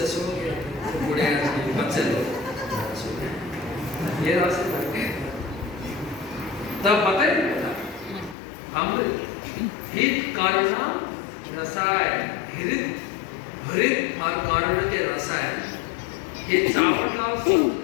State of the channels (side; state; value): right; drops out; at 8.3 s